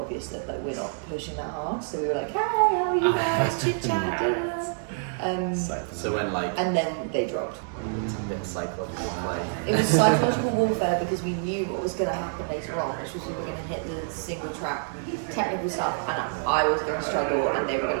that we're not pushing that hard. So we were like, hey, how are you guys? Chit-chat. So when and then they dropped. it's a bit of psychological play. It was psychological warfare because we knew what was going to happen later on, which was we were going to hit the single track technical stuff, and I was going to struggle and they were going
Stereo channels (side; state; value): left; silent; 60 dB below the other